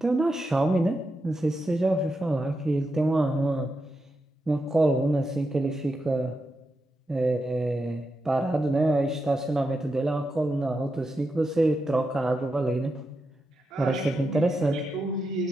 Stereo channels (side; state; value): both; normal; correlation 0.86